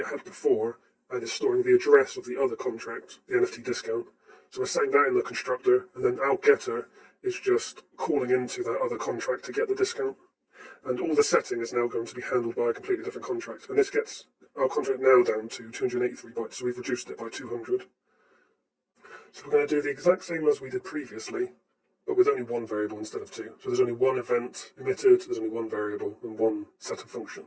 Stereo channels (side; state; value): both; identical; correlation 1.00